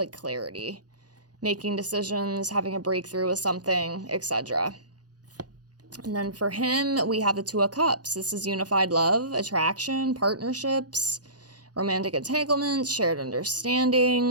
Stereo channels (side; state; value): left; late; 0.69 ms